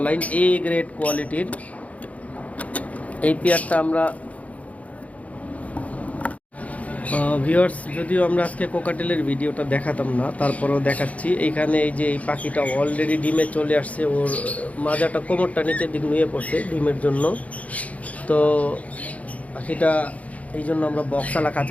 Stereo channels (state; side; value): late; right; 0.068 ms